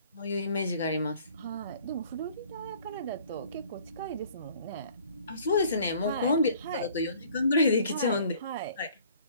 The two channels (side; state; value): both; inverted; correlation -0.54